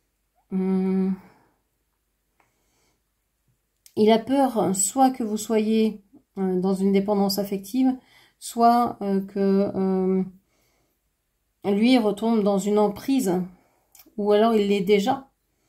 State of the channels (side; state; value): both; identical; correlation 1.00